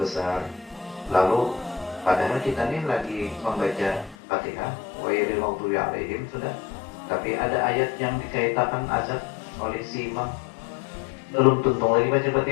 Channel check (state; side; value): drops out; right; at 4.2 s